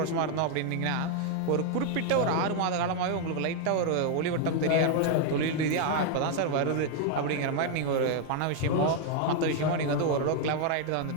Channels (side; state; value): both; different; correlation 0.00